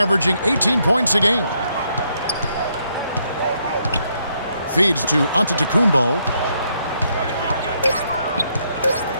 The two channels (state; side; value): inverted; both; correlation -0.75